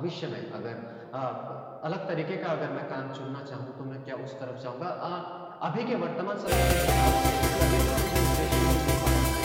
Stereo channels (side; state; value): both; identical; correlation 1.00